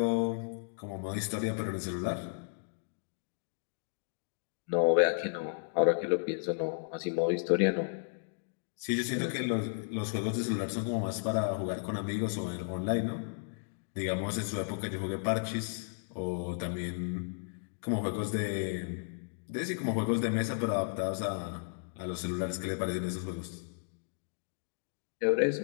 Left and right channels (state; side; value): silent; right; digital silence